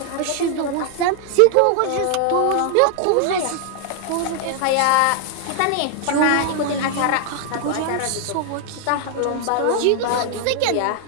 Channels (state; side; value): different; both; correlation 0.00